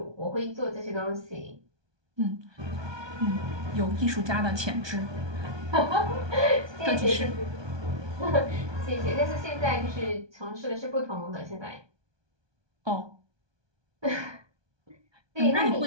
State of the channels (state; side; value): late; left; 1.2 ms